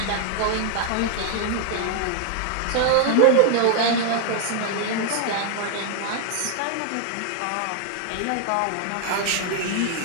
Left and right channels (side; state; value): both; different; correlation 0.00